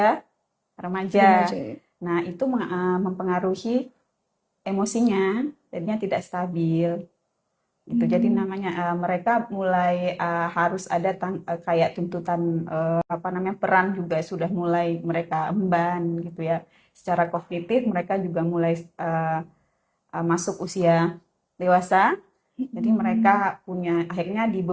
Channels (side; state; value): both; identical; correlation 1.00